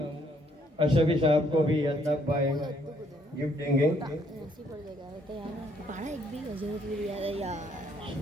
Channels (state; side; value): normal; both; correlation 0.68